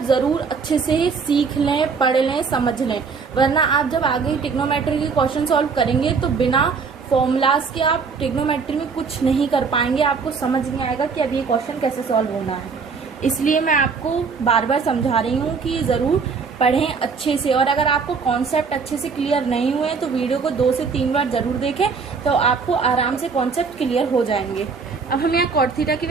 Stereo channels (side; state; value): left; quieter; 5.2 dB